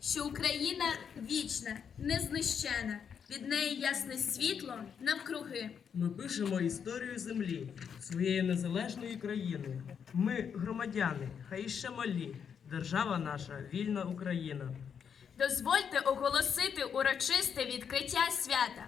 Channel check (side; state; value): right; quieter; 7.3 dB